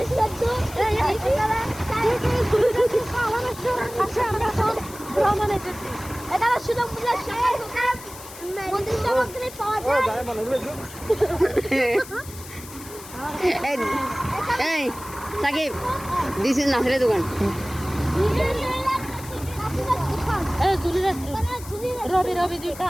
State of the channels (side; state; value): left; noise; hiss, 16 dB below the sound